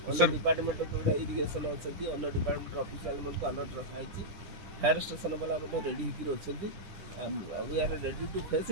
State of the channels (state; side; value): late; left; 10 ms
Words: ଅନ୍ୟ ଡିପାର୍ଟମେଣ୍ଟ ଯେଉଁଟା ଇରିଗେସନ୍ ଅଛନ୍ତି ଅନ୍ୟ ଡିପାର୍ଟମେଣ୍ଟର ଅଫିସିଆଲମାନଙ୍କୁ ଆଲର୍ଟ ରଖାହେଇଛି ଫାୟାର ଷ୍ଟେସନ ବାଲା ମଧ୍ୟ ରେଡ଼ି ହେଇକି ଅଛନ୍ତି we are ready to face